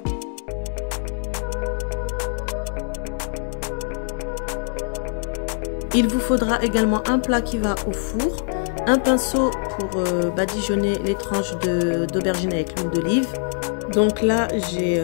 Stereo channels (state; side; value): silent; right; 61 dB below the other